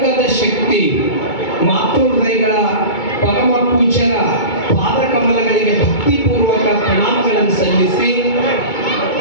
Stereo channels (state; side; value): late; right; 2.2 ms